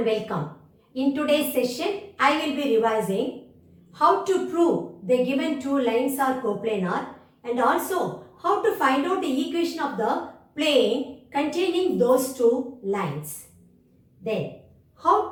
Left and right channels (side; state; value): both; identical; correlation 1.00